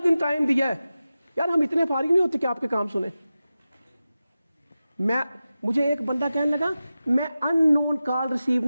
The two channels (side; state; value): both; inverted; correlation -0.94